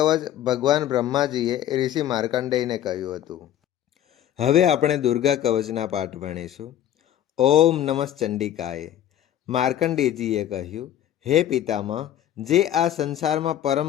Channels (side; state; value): right; quieter; 11.4 dB